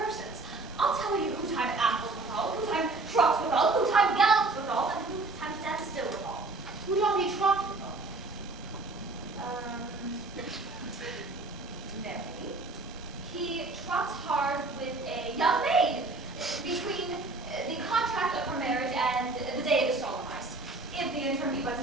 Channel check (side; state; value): left; quieter; 3.3 dB